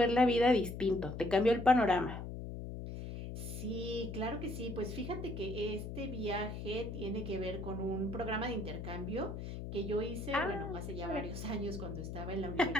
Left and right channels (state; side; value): noise; left; hum, 7 dB below the sound